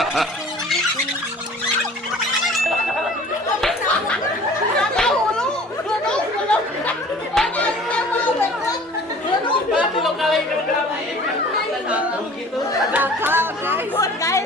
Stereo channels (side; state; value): both; normal; correlation 0.47